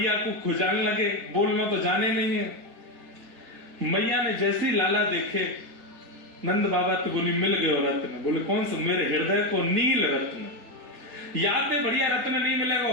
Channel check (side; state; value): left; late; 4.2 ms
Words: को खुजान लगे, बोलना तो जाने नहीं है। मैया ने जैसे ही लाला देखे, नंद बाबा तो बोली मिल गए रत्न। बोले कौन सा? मेरे हृदय को नील रत्न, याद है बढ़िया रत्न नहीं मिलेगा।